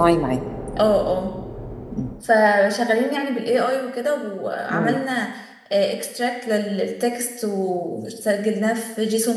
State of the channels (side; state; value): both; identical; correlation 1.00